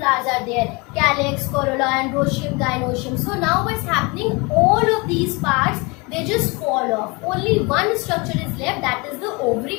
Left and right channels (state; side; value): quieter; right; 27.4 dB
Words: are there? Calyx, corolla, androecium, gynoecium. So now what's happening? All of these parts, they just fall off. Only one structure is left, that is the ovary